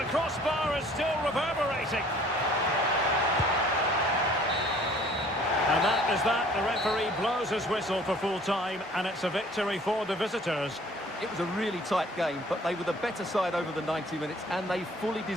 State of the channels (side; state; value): both; normal; correlation 0.54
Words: crossbar is still reverberating. And that is that. The referee blows his whistle for full time, and it's a victory for the visitors. It was a really tight game, but they were the better side over the 90 minutes, and they fully